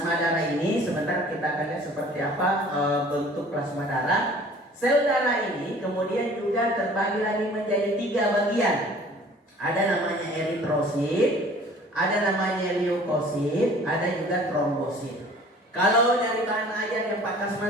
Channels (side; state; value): both; normal; correlation 0.50